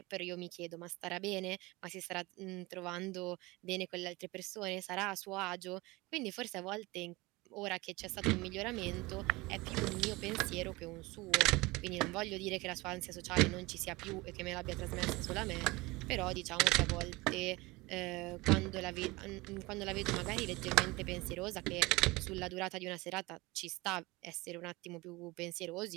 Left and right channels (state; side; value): quieter; left; 22.5 dB